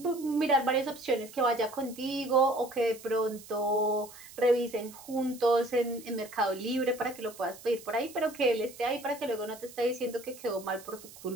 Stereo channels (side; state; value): right; noise; hiss, 18 dB below the sound